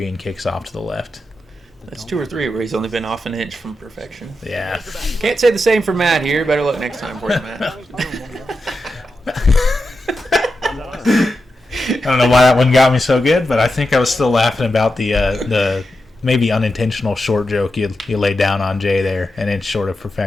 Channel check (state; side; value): normal; both; correlation 0.89